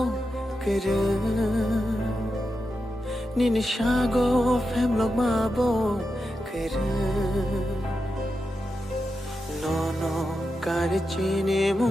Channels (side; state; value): both; normal; correlation 0.89